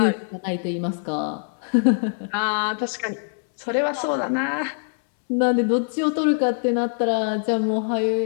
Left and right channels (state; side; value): silent; right; 63 dB below the other